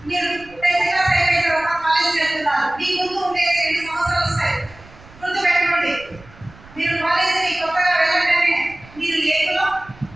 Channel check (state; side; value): noise; right; rumble, 22 dB below the sound